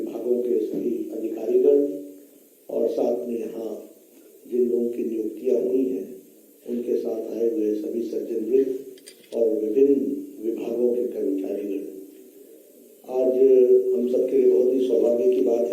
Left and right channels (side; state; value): both; identical; correlation 1.00